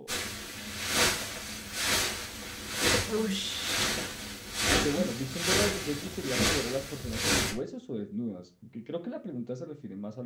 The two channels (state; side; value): identical; both; correlation 1.00